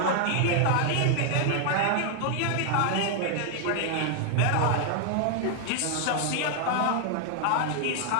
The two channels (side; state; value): both; different; correlation 0.00